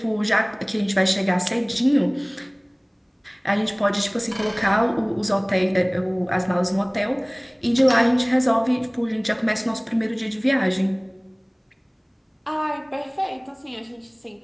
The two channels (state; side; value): identical; both; correlation 1.00